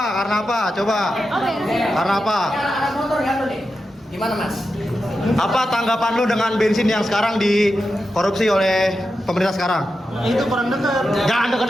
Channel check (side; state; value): both; normal; correlation 0.89